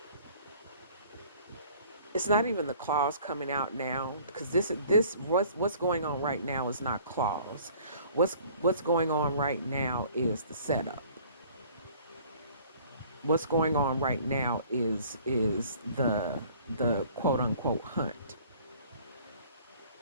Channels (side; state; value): both; inverted; correlation -0.53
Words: it's not even the claws coming out now, because this what's going on right now is not claws. What's going on right now is the setup. What's going on right now is the quote unquote hunt.